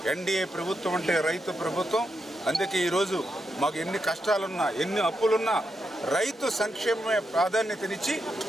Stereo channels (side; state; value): both; normal; correlation 0.84